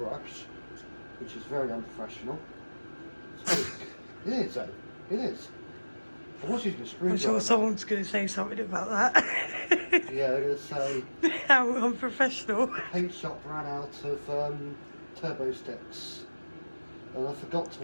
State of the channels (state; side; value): inverted; both; correlation -1.00